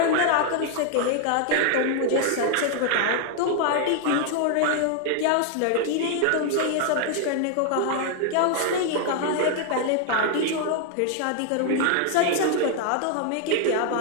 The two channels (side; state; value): both; different; correlation 0.00